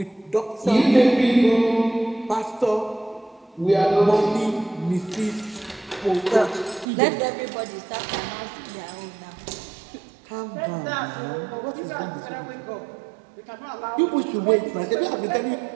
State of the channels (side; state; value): left; drops out; at 6.9 s